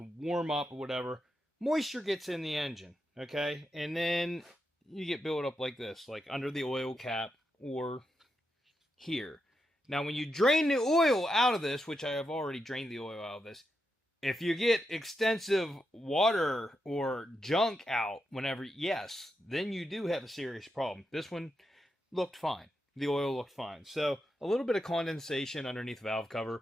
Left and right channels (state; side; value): normal; both; correlation 0.85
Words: warm up or whatever. Moisture gets in the engine, okay? And then you get built up like this, like under the oil cap or here. Now, when you drain the oil out of this, which I have already drained the oil out of this, if you get extensive water or junk out whenever, yes, then you do have a serious problem. This one looked fine. The oil looked fine. So a little bit of condensation underneath the valve